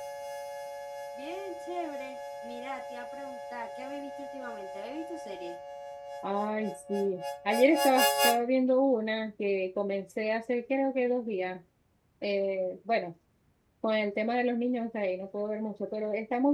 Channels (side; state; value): both; identical; correlation 1.00